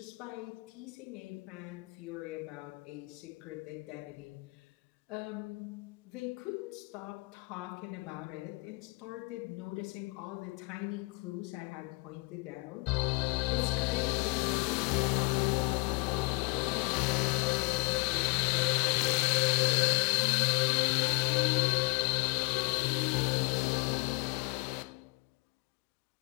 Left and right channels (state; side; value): quieter; right; 26.3 dB